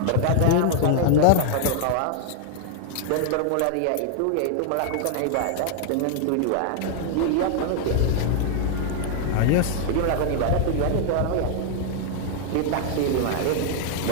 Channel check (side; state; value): both; different; correlation 0.00